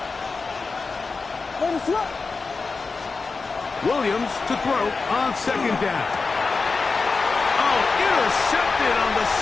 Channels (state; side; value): quieter; right; 4.3 dB